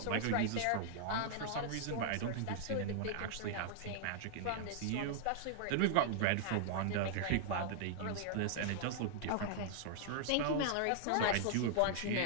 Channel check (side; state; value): both; different; correlation -0.01